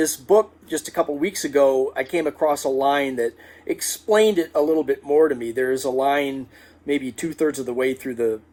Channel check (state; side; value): identical; both; correlation 1.00